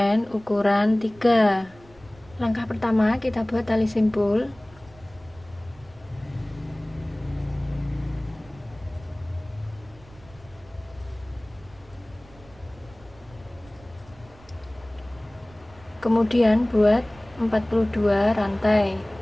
ukuran 3. Langkah pertama, kita buat tali simpul. Kemudian buat 42 rantai.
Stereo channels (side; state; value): right; noise; rumble, 24 dB below the sound